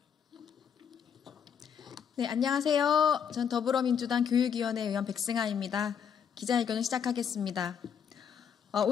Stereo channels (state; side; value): quieter; right; 7.6 dB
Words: 네, 안녕하세요. 전 더불어민주당 교육위원회 의원 백승아입니다. 기자회견을 시작하겠습니다.